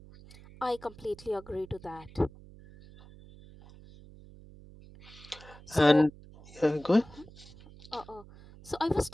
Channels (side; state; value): right; noise; hum, 20 dB below the sound